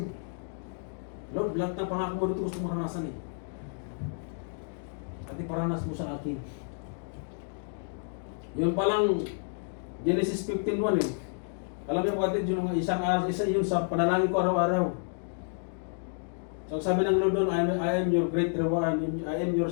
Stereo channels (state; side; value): silent; right; digital silence